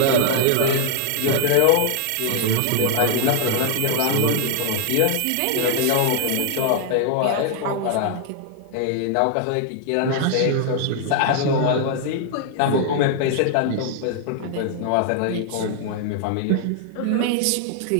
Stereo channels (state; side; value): different; both; correlation 0.00